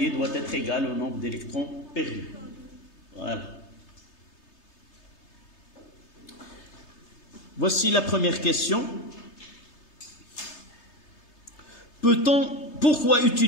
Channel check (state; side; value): late; right; 3.3 ms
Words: doit être égal au nombre d'électrons perdus. Voilà. Voici la première question. Pourquoi